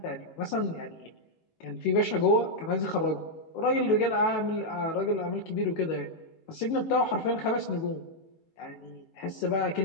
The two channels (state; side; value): late; right; 18 ms